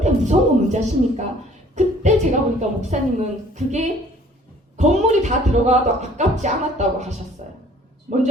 무서운 건 뭔지 아십니까? 그때 제가 보니까 목사님은 그게 건물이 다 들어가도 아깝지 않았다고 하셨어요. 뭔지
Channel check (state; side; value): normal; both; correlation 0.55